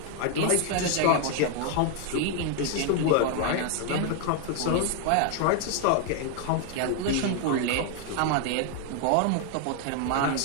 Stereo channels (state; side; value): different; both; correlation 0.00